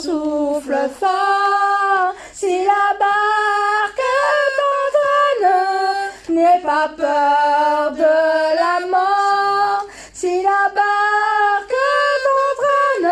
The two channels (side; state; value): both; identical; correlation 1.00